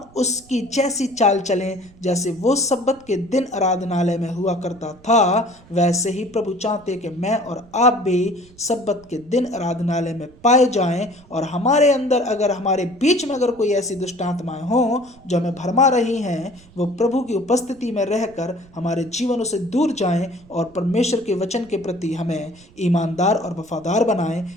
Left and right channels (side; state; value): right; noise; rumble, 25 dB below the sound